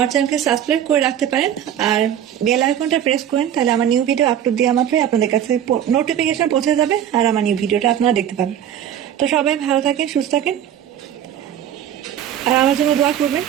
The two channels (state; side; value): quieter; left; 10.1 dB